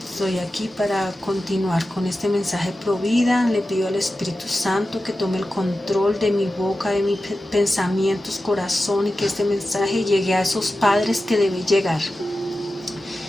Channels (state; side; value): normal; both; correlation 0.93